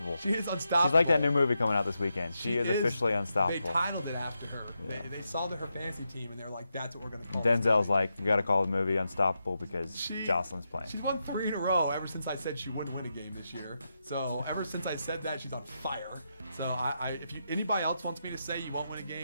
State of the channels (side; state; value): both; inverted; correlation -0.85